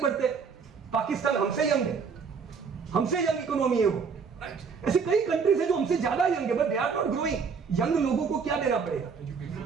बढ़ते। पाकिस्तान हमसे यंग है, हमसे यंग इकोनॉमी है वो। ऐसे कई कंट्रीज है जो हमसे ज्यादा यंग है, but they are not growing. Young लोगों को क्या देना पड़ेगा?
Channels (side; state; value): left; quieter; 5.7 dB